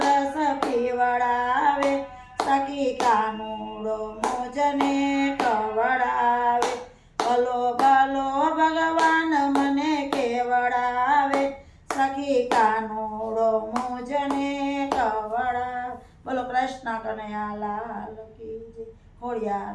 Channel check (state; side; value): identical; both; correlation 1.00